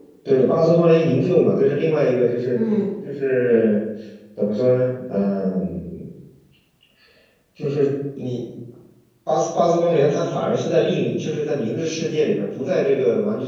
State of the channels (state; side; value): identical; both; correlation 1.00